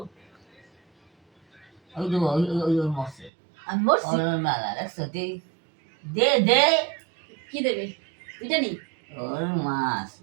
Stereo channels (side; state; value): left; drops out; at 3.3 s